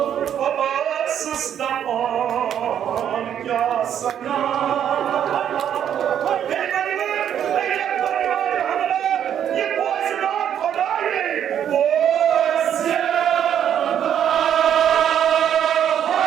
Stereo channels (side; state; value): left; quieter; 9.5 dB